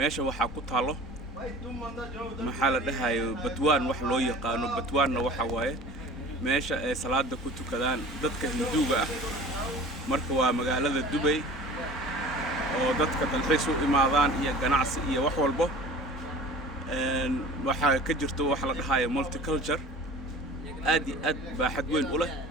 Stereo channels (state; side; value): normal; both; correlation 0.41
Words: وحا كطاله محل دهاي بتوان وح لو يقانو بتوان وحا واye meesha ay salaada ku tukadaan dadka Hinduuga ah. Marka waa magaalada Dubai oo dadka dalxiis u imaadaan iyo ganacsi iyo wax walba waxa ka jirto wax la dhahayo multicultural aad baaxad weyn u leh.